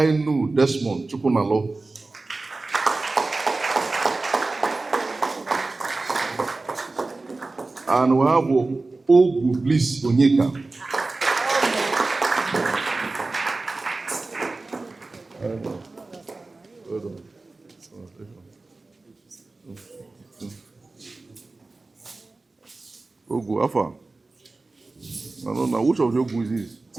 Desmond Chukunalo. And we have Ogu Bliss Onyeka. Ogu, Afa. I don't know. Which of your Ogu is this?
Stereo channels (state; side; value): quieter; left; 3.4 dB